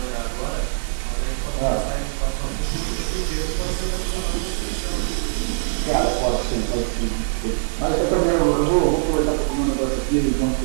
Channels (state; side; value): silent; left; 56 dB below the other